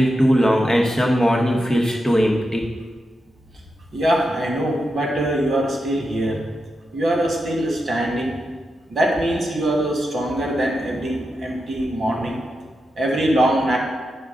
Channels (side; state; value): both; normal; correlation 0.88